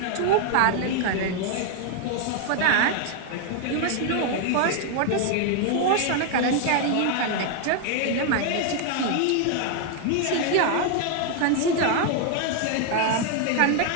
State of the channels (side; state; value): both; different; correlation 0.00